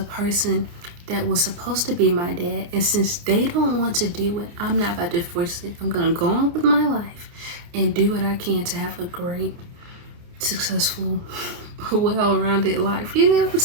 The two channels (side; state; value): left; late; 29 ms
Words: person that was supposed to be my dad. And since they don't want to do it, I'm not about to force it. I'm going to go on with my life and do what I can to have a great, successful, well-rounded life. You know what I'm